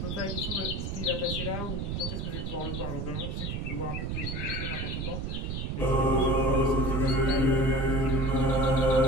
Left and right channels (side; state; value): right; noise; rumble, 3 dB below the sound